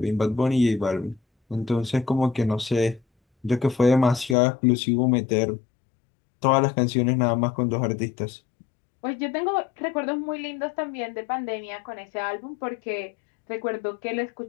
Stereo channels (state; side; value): drops out; right; at 4.4 s